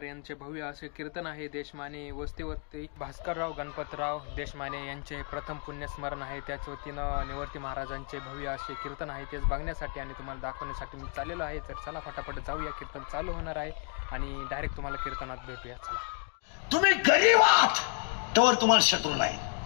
यांचे भव्य असे कीर्तन आहे. देशमाने वस्तीवरती भास्करराव गणपतराव देशमाने यांचे प्रथम पुण्यस्मरण आहे. त्याच वतीनं निवर्ती महाराजांचे भव्य असे कीर्तन आहे. तेच बघण्यासाठी आणि तुम्हाला दाखवण्यासाठी मी चाललेलो आहे. तर चला फटाफट जाऊया, कीर्तन चालू होणार आहे आणि डायरेक्ट तुम्हाला कीर्तनात भेटूया. चला. तुम्ही गरीब आहात तर तुम्हाला शत्रू नाही.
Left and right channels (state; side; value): quieter; right; 37.6 dB